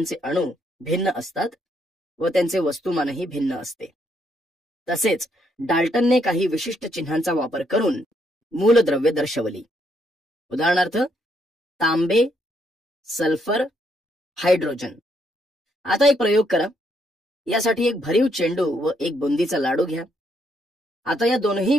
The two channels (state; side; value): normal; both; correlation 0.74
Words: अणू भिन्न असतात व त्यांचे वस्तुमानही भिन्न असते. तसेच डाल्टनने काही विशिष्ट चिन्हांचा वापर करून मूलद्रव्य दर्शवली. उदाहरणार्थ तांबे, सल्फर हायड्रोजन. आता एक प्रयोग करा. यासाठी एक भरीव चेंडू व एक बुंदीचा लाडू घ्या. आता या दोनही